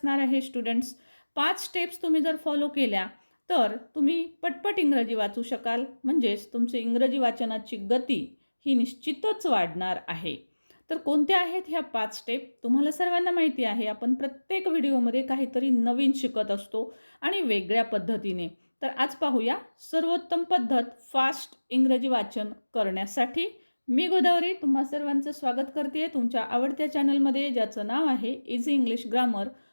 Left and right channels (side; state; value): both; inverted; correlation -1.00